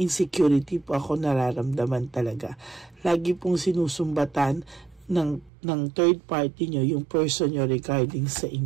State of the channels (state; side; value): drops out; left; at 5.5 s